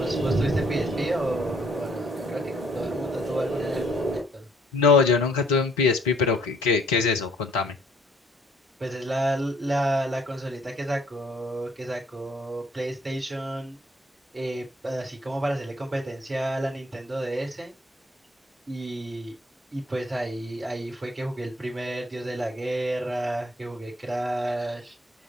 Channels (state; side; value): normal; both; correlation 0.63